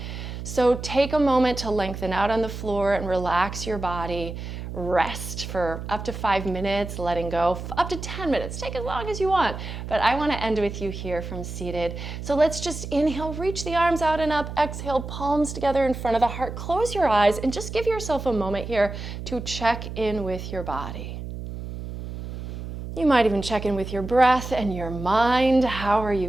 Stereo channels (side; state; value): right; noise; hum, 8 dB below the sound